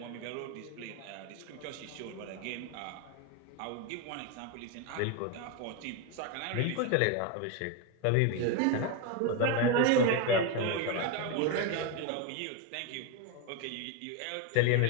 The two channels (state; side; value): different; both; correlation 0.02